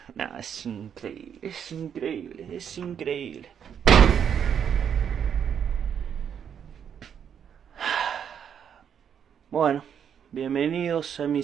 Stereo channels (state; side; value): quieter; left; 8.2 dB